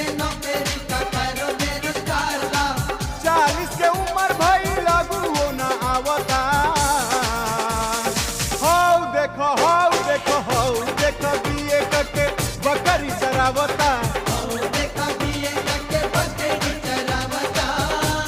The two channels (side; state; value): both; identical; correlation 1.00